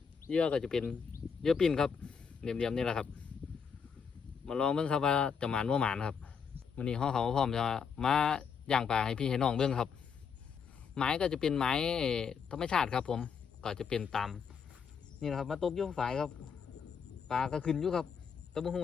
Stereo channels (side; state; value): right; quieter; 6.4 dB